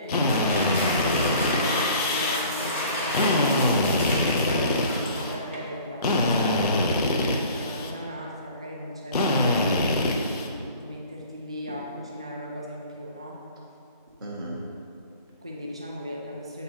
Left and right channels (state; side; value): inverted; both; correlation -0.48